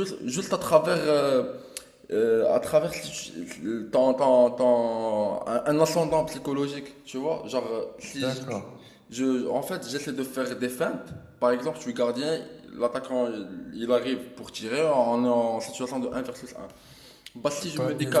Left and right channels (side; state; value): both; identical; correlation 1.00